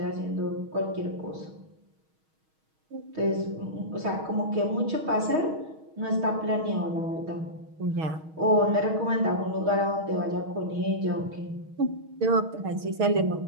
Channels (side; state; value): left; late; 6.3 ms